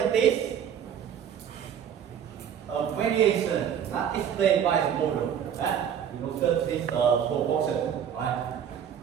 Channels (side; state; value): left; quieter; 8.7 dB